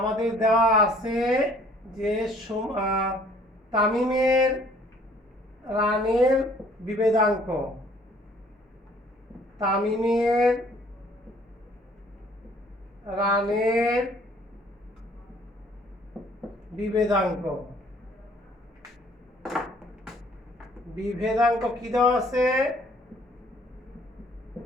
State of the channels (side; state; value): both; normal; correlation 0.58